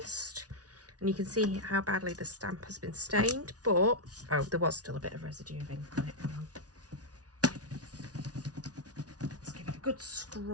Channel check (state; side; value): late; left; 0.68 ms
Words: And you can see how badly the stamp has been stained. But, oh, there was still a bit of residue of ink on it. Hang on. Let's give it a good